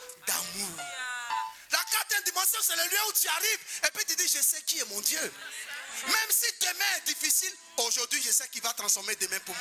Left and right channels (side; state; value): both; identical; correlation 1.00